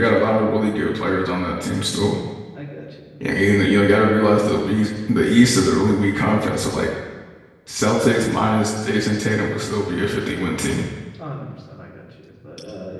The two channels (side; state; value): both; identical; correlation 1.00